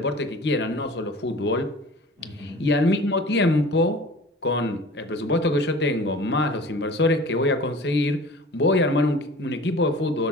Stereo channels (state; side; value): normal; both; correlation 0.42